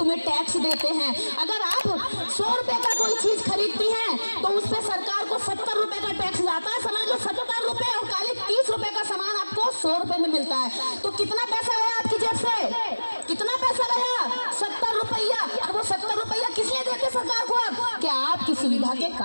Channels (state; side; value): inverted; both; correlation -1.00